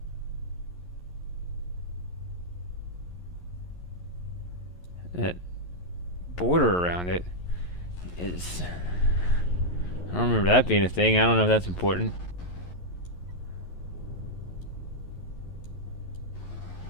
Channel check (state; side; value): late; right; 11 ms